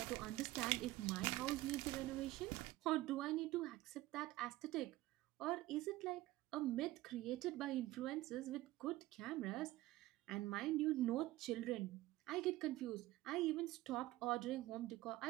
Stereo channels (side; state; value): left; quieter; 17.2 dB